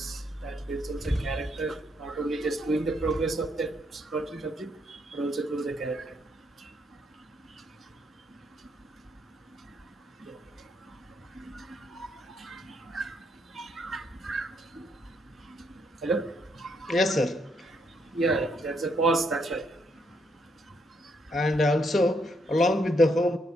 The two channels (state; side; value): normal; both; correlation 0.75